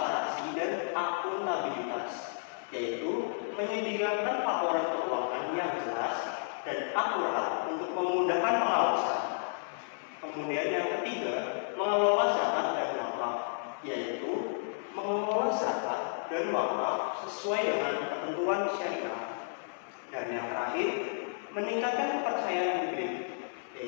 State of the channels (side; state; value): right; silent; digital silence